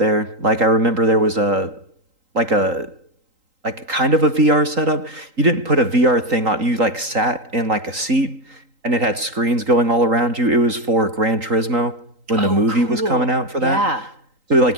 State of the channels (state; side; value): late; left; 3.8 ms